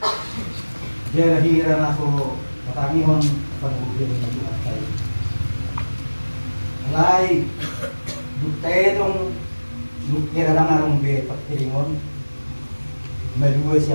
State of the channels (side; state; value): both; inverted; correlation -1.00